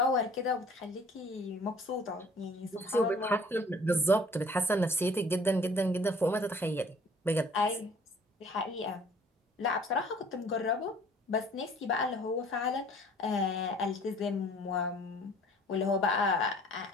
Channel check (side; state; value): both; normal; correlation 0.53